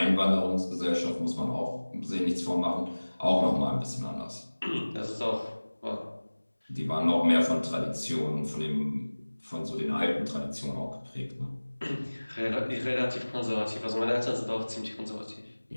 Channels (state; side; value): inverted; both; correlation -1.00